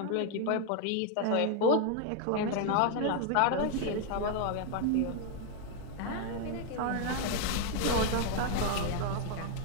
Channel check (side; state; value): both; different; correlation 0.00